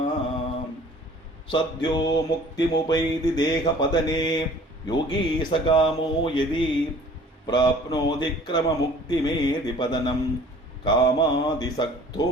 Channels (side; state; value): both; normal; correlation 0.50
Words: சத்யோ முக்திமுபைதி தேகபதனே யோகி சகாமோ யதி பிராப்னோதி கிரமமுக்திமேதி பதனம் காமாதிசக்தோ